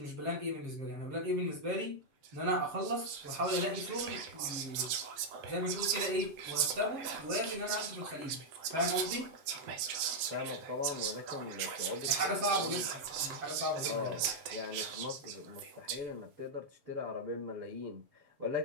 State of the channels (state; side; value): late; left; 7.8 ms